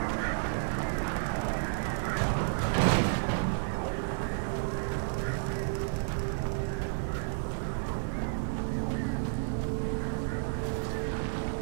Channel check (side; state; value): left; silent; digital silence